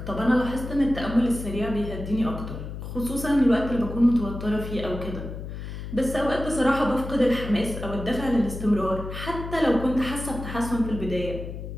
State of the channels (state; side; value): noise; left; hum, 8 dB below the sound